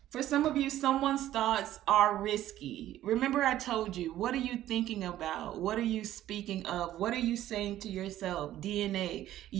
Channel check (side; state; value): left; quieter; 13.3 dB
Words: For some of you, someone's thoughts are risky. Remember, I told you, what are you thinking about? What are you speaking of? What are you saying to yourself? DNA.